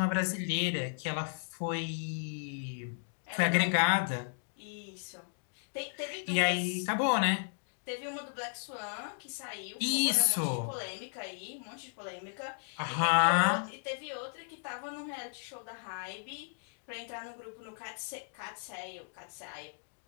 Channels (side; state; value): right; silent; digital silence